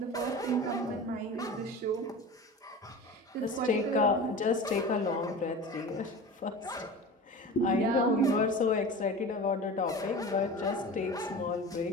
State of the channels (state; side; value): normal; both; correlation 0.33